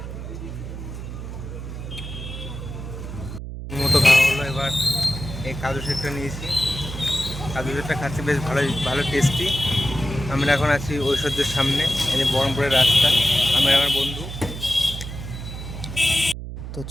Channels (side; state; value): right; noise; hum, 8 dB below the sound